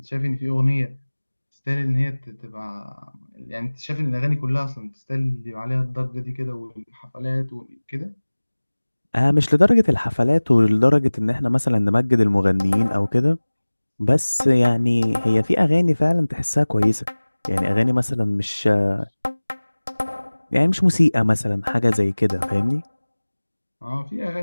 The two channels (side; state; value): both; inverted; correlation -1.00